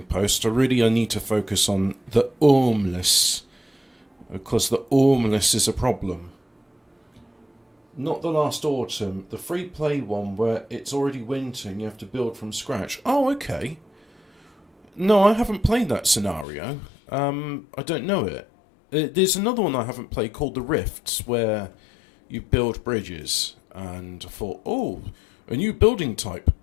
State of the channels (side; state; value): right; drops out; at 16.4 s